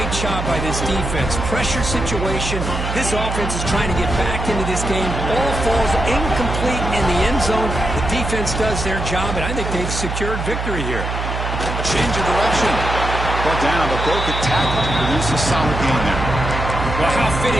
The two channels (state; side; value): noise; right; hum, 4 dB below the sound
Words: job by this defense. Pressure situation. This offense is trying to get back into this game. Ball falls incomplete in the end zone. The defense does their job, and I think they've secured victory here. A change of direction. Brought down, but broke a tackle to produce a solid gain there. Well, how